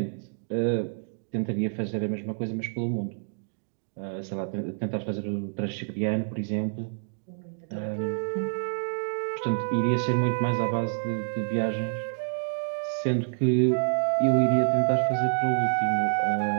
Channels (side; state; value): left; silent; digital silence